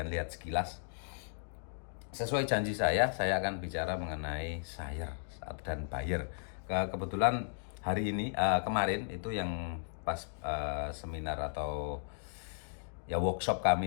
lihat sekilas. Sesuai janji saya akan bicara mengenai seller dan buyer. Kebetulan hari ini, kemarin itu yang pas seminar atau ya workshop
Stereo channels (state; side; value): silent; right; digital silence